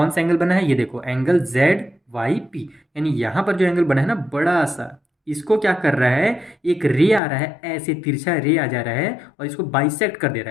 सा एंगल बना है? ये देखो, एंगल जेड वाई पी। यानी यहाँ पर जो एंगल बना है ना, बड़ा सा, इसको क्या कर रहा है, एक रे आ रहा है, ऐसे तिरछा रे आ जा रहा है और इसको बाइसेक्ट कर दे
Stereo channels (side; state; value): right; drops out; at 7.2 s